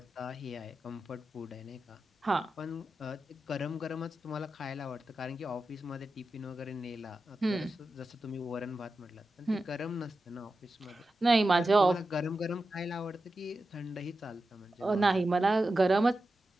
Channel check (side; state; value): both; normal; correlation 0.91